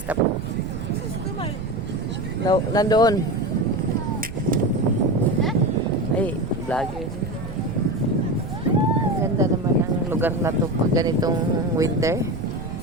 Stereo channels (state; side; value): noise; right; rumble, 10 dB below the sound